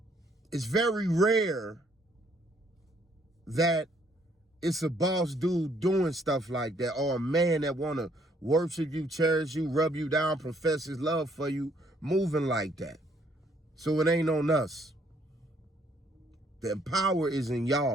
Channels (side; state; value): both; normal; correlation 0.67